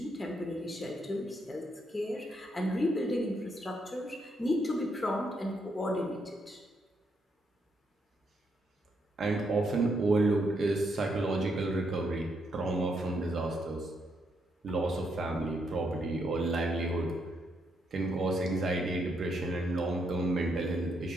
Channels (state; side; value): normal; both; correlation 0.77